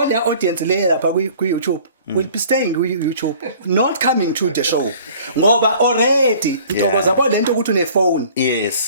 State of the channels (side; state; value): both; inverted; correlation -0.50